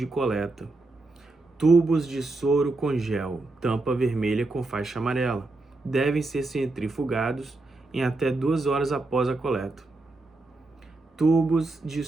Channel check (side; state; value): left; quieter; 3.1 dB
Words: coleta. Tubos de soro com gel, tampa vermelha com faixa amarela. devem ser centrifugados em até 2 horas após a coleta. Tubos de